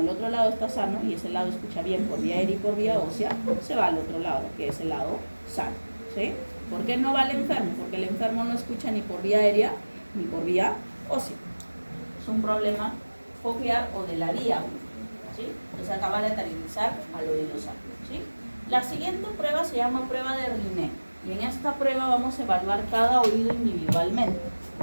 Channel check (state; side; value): inverted; both; correlation -1.00